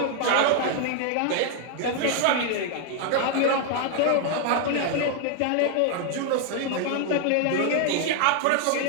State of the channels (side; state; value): both; different; correlation 0.00